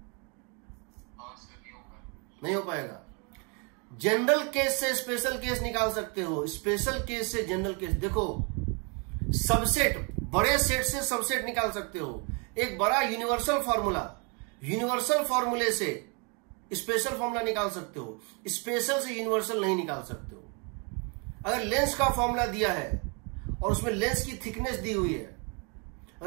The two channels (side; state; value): left; quieter; 34.2 dB